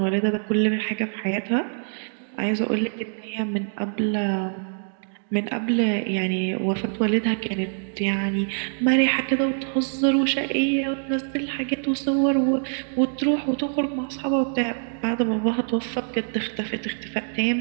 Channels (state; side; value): silent; left; digital silence